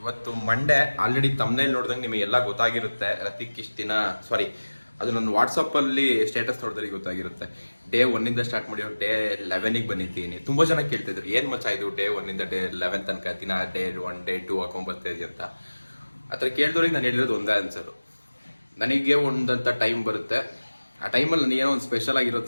ಮಂಡೇ. ಆಲ್ರೆಡಿ ತಮ್ಮನೇಲಿ ನೋಡಿದಂಗೆ ನಿಮಗೆಲ್ಲ ಗೊತ್ತಾಗಿರುತ್ತೆ. ರತಿಕ್ ಇಷ್ಟು ದಿನ ಅದು ನನ್ನ ವಾಟ್ಸಪ್ಪಲ್ಲಿ ಸ್ಟೇಟಸ್ ನೋಡಿದ್ರೆ ಗೊತ್ತಾಗಿರುತ್ತೆ. ಡೇ 1 ಸ್ಟಾರ್ಟ್ ಮಾಡಿ ಡೇ 11 ಬಂದಿದ್ದೀನಿ. ತುಂಬ ಜನ ಕೇಳ್ತಿದ್ರು, ಏನು ಮಚ್ಚ ಇದು ಡೇ 1 ಡೇ 11 ತನಕ ದಿನ ಡೇ 1 ಡೇ 2 ಹಾಕೊಂಡ್ಬರ್ತಾಯಿದ್ವಿ ಅಂತ. ಆ ಥರ ಕೇಳಿದವ್ರಿಗೆ ನಾನು ಹೇಳಿರೋದು ಒಂದೇ ಆನ್ಸರು. ನನಗೆ ಒಂದಂಥ ಟೈಮ್ ಬರುತ್ತೆ, ಆ ಟೈಮಲ್ಲಿ ನನಗೇನೋ ಒಂದು ಸ್ಪೆಷಲ್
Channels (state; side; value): inverted; both; correlation -1.00